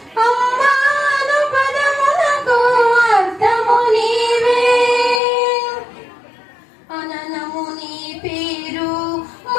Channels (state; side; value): drops out; right; at 5.2 s